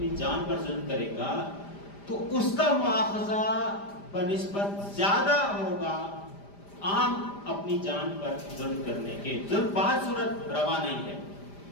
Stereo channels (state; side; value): late; right; 5.0 ms